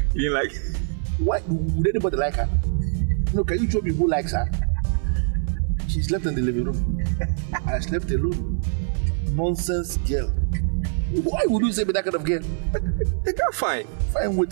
You mean like... Why would anybody like her? No, can you show me who likes her? She slept in the living room. I slept alone. Nonsense girl. Why would you say me that kind of girl? The girl fine. Fine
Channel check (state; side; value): silent; left; 56 dB below the other